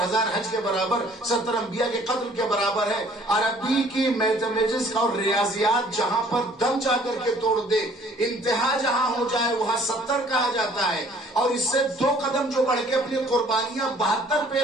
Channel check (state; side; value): normal; both; correlation 0.57